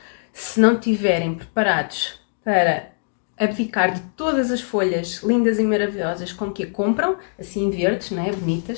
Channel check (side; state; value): right; silent; digital silence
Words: se não estiverem preparados para abdicar de todas as folhas lindas e maravilhosas com que a compram, assim verdes, não é?